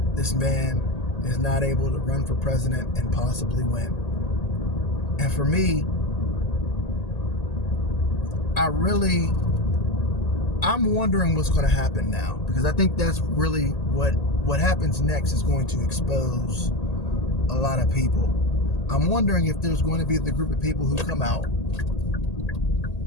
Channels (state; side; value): late; right; 1.8 ms